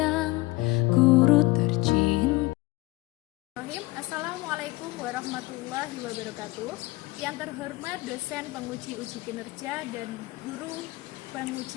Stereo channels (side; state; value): right; quieter; 21.1 dB